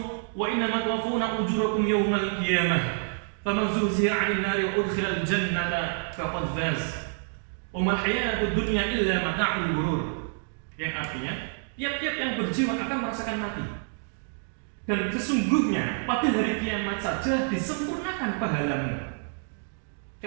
wa innama tuwaffawna ujurakum yawmal qiyamah faman zuhziha 'anil nari wa udkhilal jannata faqad faz wa mal hayatud dunya illa mata'ul ghurur. Yang artinya tiap-tiap yang berjiwa akan merasakan mati, dan sesungguhnya pada hari kiamat saja disempurnakan pahalamu.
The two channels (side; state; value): left; silent; 59 dB below the other